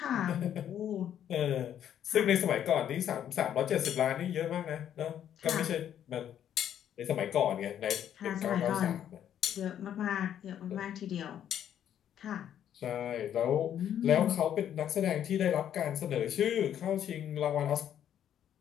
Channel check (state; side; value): quieter; right; 10.1 dB